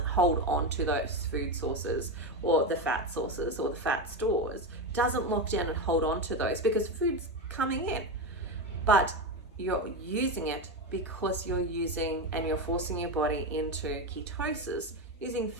hold on to those food sources or the fat sources or the fat stores. It doesn't lock down and hold on to those because food's coming in. But you're using it because you're using and you're forcing your body into ketosis, using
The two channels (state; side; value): normal; both; correlation 0.15